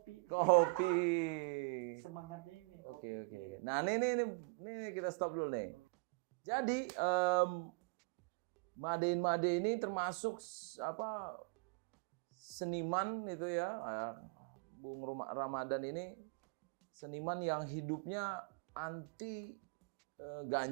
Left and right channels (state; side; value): quieter; left; 32.2 dB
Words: Kopi. Semangatnya ini kopi. Oke. Iya. Nah, ini kita stop dulu nih. Jadi Made ini termasuk apa seniman itu ya, Bung Ramadan ini seniman yang hidupnya anti